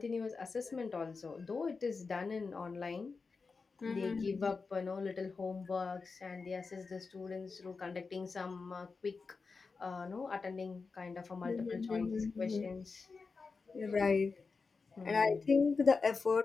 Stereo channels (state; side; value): quieter; right; 4.5 dB